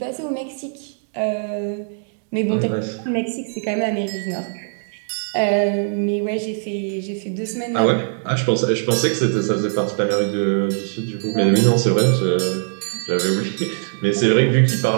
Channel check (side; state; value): left; silent; digital silence